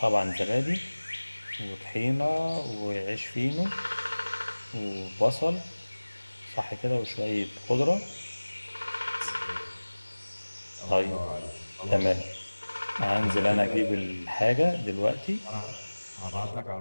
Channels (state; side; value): inverted; both; correlation -1.00